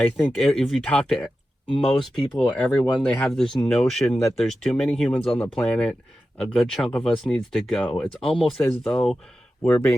think if you talk to most people, everyone, they have this notion that there's too many humans on the planet. A good chunk of us needs to go. It's almost as though we're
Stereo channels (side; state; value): both; normal; correlation 0.92